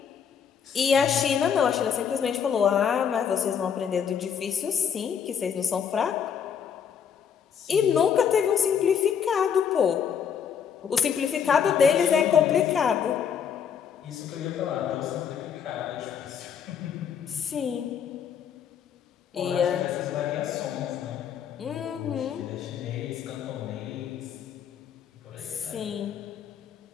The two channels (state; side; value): quieter; right; 7.6 dB